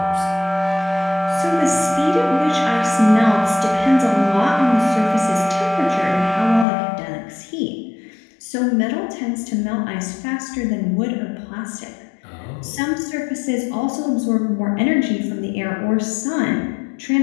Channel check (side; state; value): right; drops out; at 6.7 s